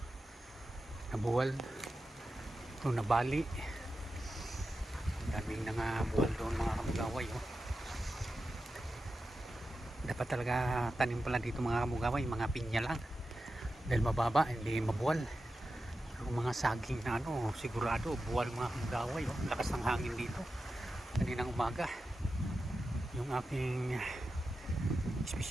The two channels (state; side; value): normal; both; correlation 0.91